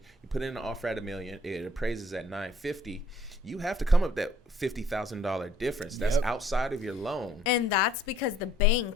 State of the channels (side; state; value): both; normal; correlation 0.60